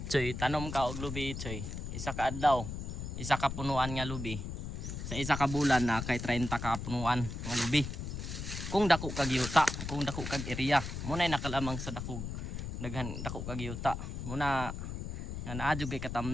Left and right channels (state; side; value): noise; left; rumble, 6 dB below the sound